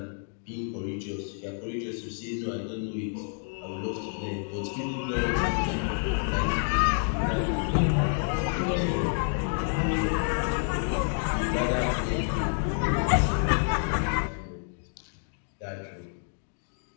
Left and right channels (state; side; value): silent; right; 59 dB below the other